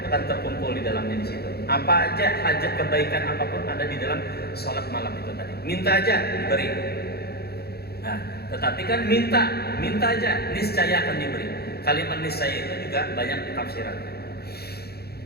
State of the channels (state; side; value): late; right; 0.46 ms